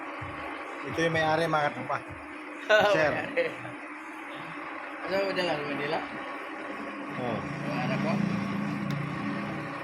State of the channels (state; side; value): identical; both; correlation 1.00